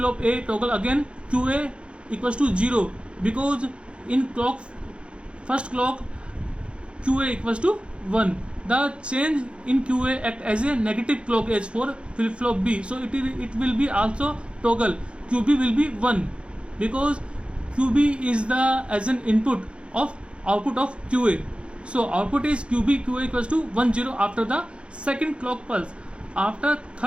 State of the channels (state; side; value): late; left; 0.058 ms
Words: A toggle again, QA equals to 0 because in first clock QA equals to 1. The change in QA act as a negative clock edge for flip-flop B. So it will be also toggle. QB will be 1 because QB is the as an input of output of QA. So output is QB, QA equals to 1 0 after the second clock pulse. After